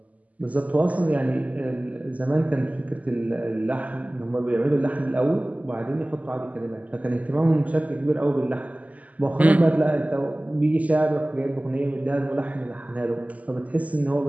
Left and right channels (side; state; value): left; late; 0.073 ms